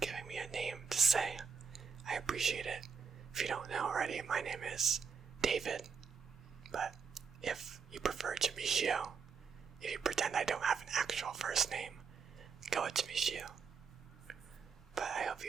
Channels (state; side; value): quieter; left; 6.0 dB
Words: me a name to say. I appreciate it. If you don't know already, my name is David. But if you prefer Jamishio, if you pretend I don't have an actual first name, go with Jamishio. But I hope